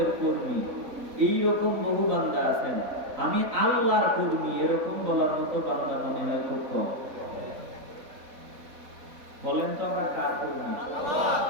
কর্মী। এইরকম বহু বান্দা আছেন আমি আল্লাহর কর্মী, এরকম বলার মতো বান্দা মনে হয় খুব কম। বলেন তো আমরা কার কর্মী?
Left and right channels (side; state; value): left; late; 4.0 ms